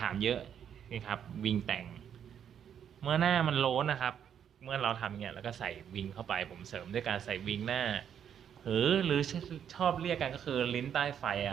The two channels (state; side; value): quieter; left; 8.7 dB